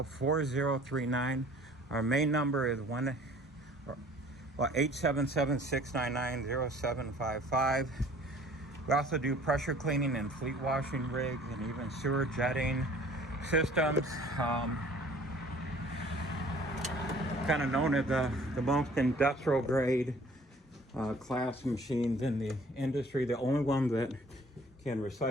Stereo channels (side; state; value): both; normal; correlation 0.52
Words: Our main number is 877-699-0755. We also do pressure cleaning and fleet washing rigs and even sewer jetting systems. Kind of known as the most industrial grade class machines in the industry. The only one that can